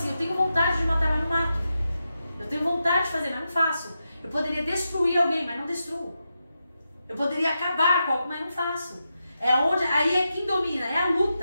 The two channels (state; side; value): inverted; both; correlation -0.88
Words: eu tenho vontade de matar, mas não mato. Eu tenho vontade de fazer, mas não faço. Eu poderia destruir alguém, mas não destruo. Eu poderia acabar com algo, mas não faço. Aí é quem domina, é a